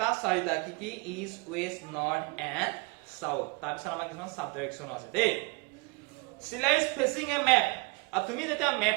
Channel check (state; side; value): quieter; left; 28.0 dB